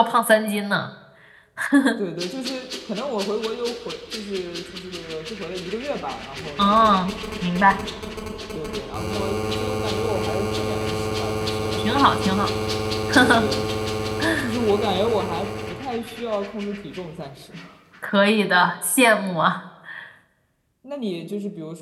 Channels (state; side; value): identical; both; correlation 1.00